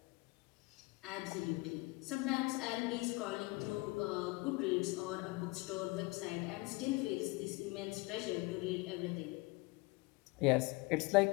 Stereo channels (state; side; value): quieter; right; 24.6 dB